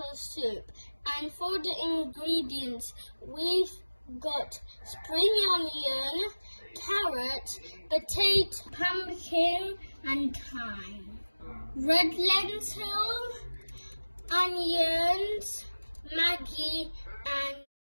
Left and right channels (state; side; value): inverted; both; correlation -1.00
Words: soup, and for the ingredients we've got spring onion, carrot, potato, pumpkin and thyme, red lentil, onions, Maggie and